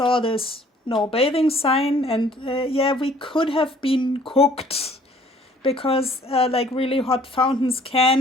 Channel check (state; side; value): normal; both; correlation 0.57